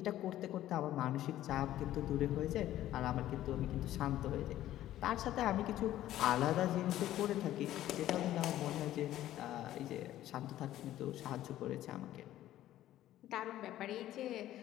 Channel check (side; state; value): right; quieter; 13.4 dB